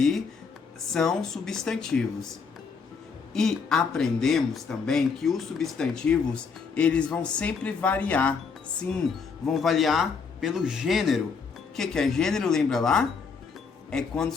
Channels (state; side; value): quieter; right; 5.4 dB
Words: são substantivos. E aprendemos também que os substantivos, eles vão sempre variar. Sim, vão variar pelo gênero. O que é gênero? Lembra lá? É quando o